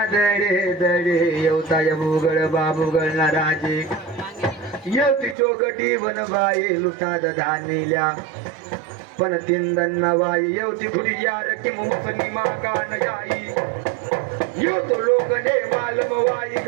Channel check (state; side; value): drops out; left; at 5.4 s